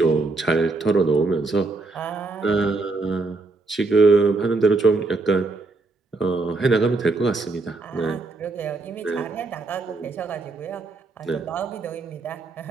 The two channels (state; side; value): quieter; left; 3.5 dB